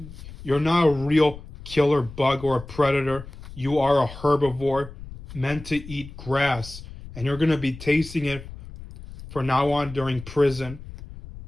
you're not a real killer bug or a predator. You are a herbivore meant to eat grass, and you're going to be tasting it from now on during prison.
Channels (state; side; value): noise; left; rumble, 15 dB below the sound